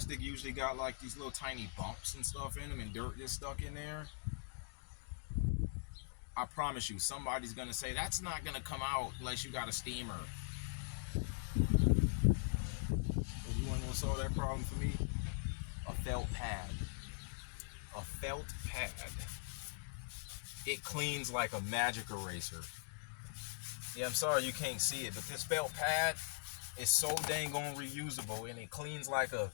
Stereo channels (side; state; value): right; silent; digital silence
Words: usually got, like, these little tiny bumps and stuff in them, and dirt is stuck in there. I promise you, somebody's going to say, that's not going to come out unless you got a steamer. You want to know what solved that problem for me? A felt pad. A felt pad. It cleans like a magic eraser. Yeah, I'm sorry you can't see it, but this felt pad, It's so dang on reusable, and it cleans like a